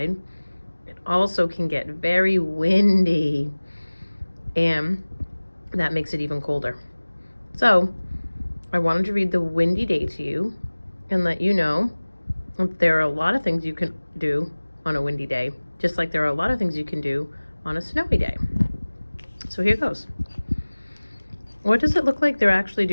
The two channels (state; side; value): inverted; both; correlation -1.00